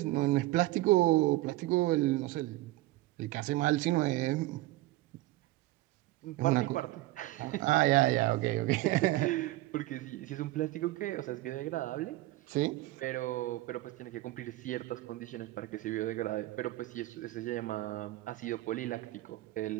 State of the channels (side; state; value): left; quieter; 18.2 dB